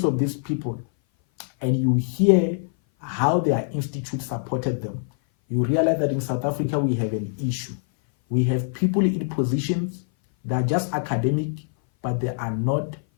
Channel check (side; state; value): right; silent; 58 dB below the other